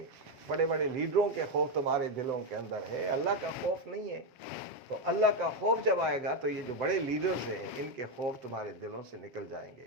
بڑے بڑے لیڈروں کے خوف تمہارے دلوں کے اندر ہے، اللہ کا خوف نہیں ہے. تو اللہ کا خوف جب آئے گا تو یہ جو بڑے لیڈرز ہیں ان کے خوف تمہارے دلوں سے نکل جائیں گے.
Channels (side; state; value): left; late; 7.3 ms